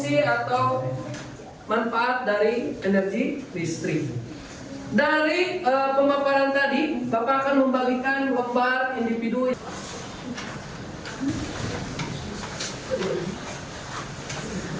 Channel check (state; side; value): identical; both; correlation 1.00